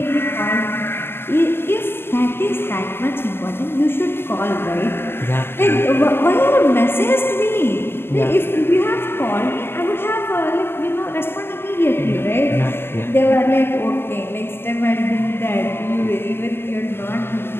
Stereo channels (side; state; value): right; late; 0.11 ms